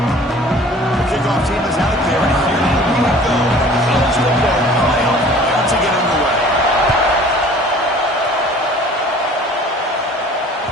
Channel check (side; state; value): both; normal; correlation 0.49